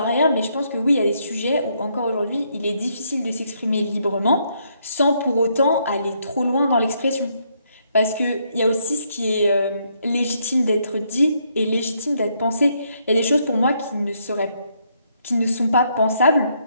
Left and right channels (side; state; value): both; inverted; correlation -0.73